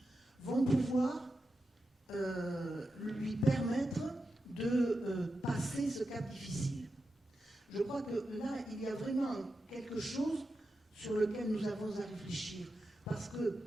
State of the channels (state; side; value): normal; both; correlation 0.89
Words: vont pouvoir lui permettre de passer ce cap difficile. Je crois que là, il y a vraiment quelque chose sur lequel nous avons à réfléchir. Parce que